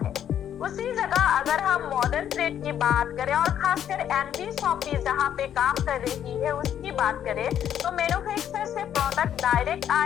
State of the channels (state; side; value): quieter; right; 9.9 dB